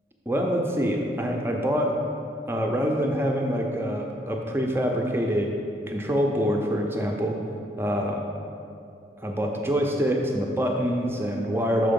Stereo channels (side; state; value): both; normal; correlation 0.69